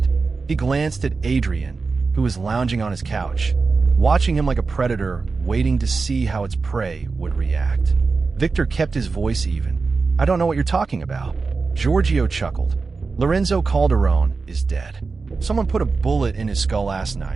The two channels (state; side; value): quieter; left; 4.3 dB